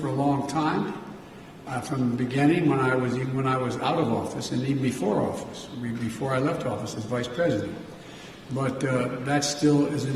a long time, from the beginning, when I was out of office, and even before office, before I left office as vice president. But that still is an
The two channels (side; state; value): both; identical; correlation 1.00